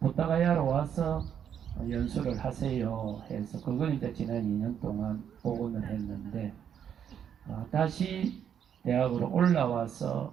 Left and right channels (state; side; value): quieter; left; 8.6 dB